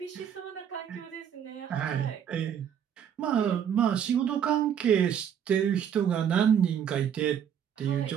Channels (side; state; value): left; quieter; 8.7 dB